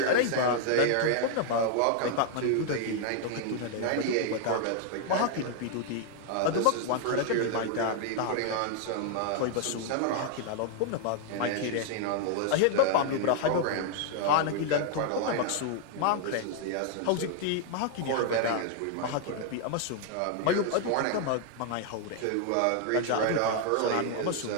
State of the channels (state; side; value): different; both; correlation 0.00